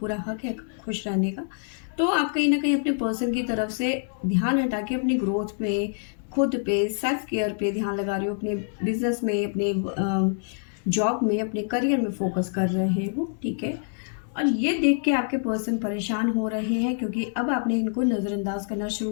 हक है खुश रहने का। तो आप कहीं ना कहीं अपने पर्सन की तरफ से ध्यान हटा के अपनी ग्रोथ पे, खुद पे, सेल्फ केयर पे ध्यान लगा रहे हो, अपने बिजनेस में, अपने जॉब में, अपने करियर में फोकस कर रहे हो, ठीक है। और ये देख के आपके पर्सन परेशान हो रहे हैं, क्योंकि अब आपने इनको नज़रअंदाज करना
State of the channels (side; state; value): right; silent; digital silence